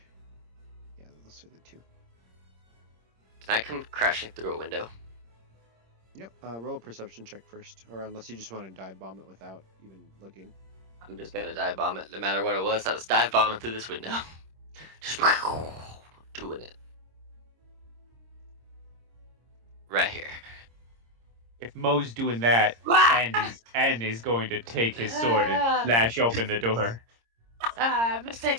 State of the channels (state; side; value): late; left; 26 ms